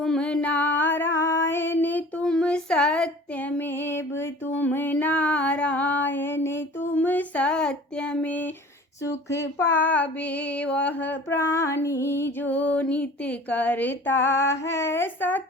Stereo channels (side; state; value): both; normal; correlation 0.45